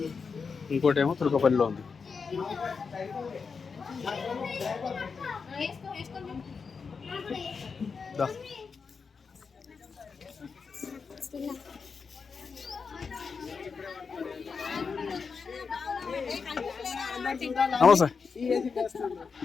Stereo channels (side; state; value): right; quieter; 5.3 dB